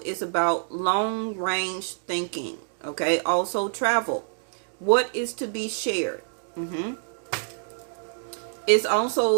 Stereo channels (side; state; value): left; silent; digital silence